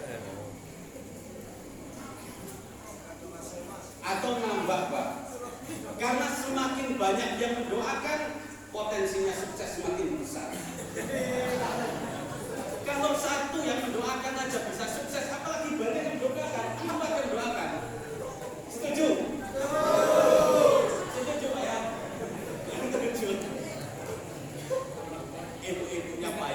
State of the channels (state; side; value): identical; both; correlation 1.00